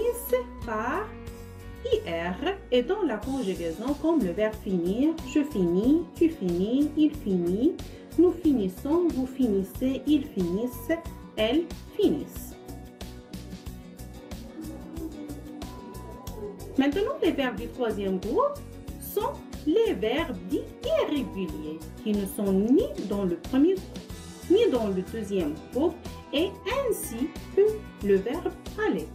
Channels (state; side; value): identical; both; correlation 1.00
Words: par IR et dans la conjugaison comme le verbe finir, je finis, tu finis, il finit, nous finissons, vous finissez, ils finissent, elles finissent. Maintenant, les verbes du troisième groupe sont les verbes dits irréguliers qui ne sont ni dans le premier groupe ni dans le deuxième groupe et ainsi que le verbe aller.